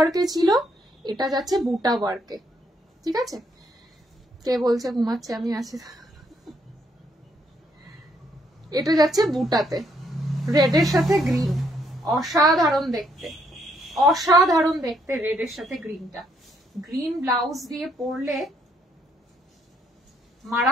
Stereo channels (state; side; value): normal; both; correlation 0.72